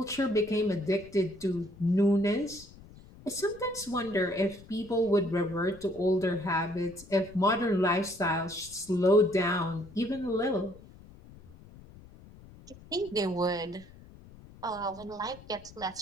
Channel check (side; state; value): left; noise; rumble, 21 dB below the sound